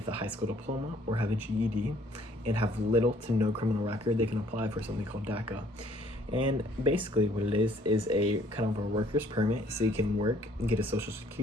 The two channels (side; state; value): both; normal; correlation 0.61